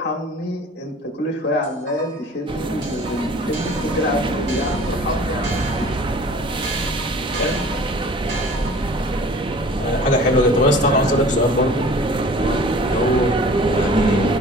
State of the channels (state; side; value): normal; both; correlation 0.46